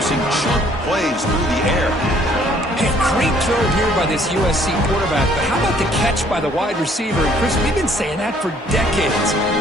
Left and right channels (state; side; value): normal; both; correlation 0.61